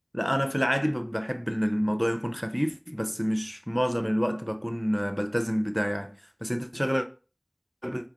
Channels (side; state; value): both; identical; correlation 1.00